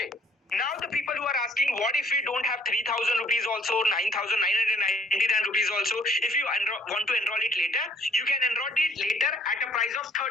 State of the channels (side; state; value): both; normal; correlation 0.61